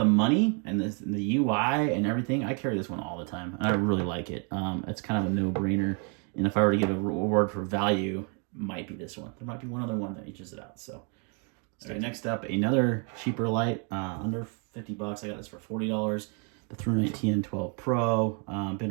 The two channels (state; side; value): quieter; left; 37.7 dB